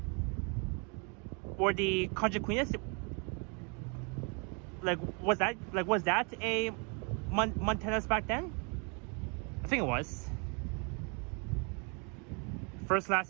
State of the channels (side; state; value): left; quieter; 34.7 dB